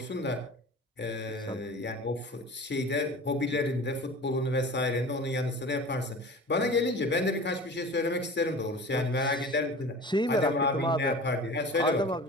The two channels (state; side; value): normal; both; correlation 0.38